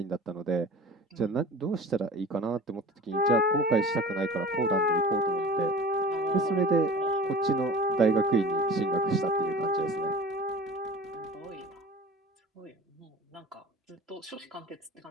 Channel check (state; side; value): normal; both; correlation 0.40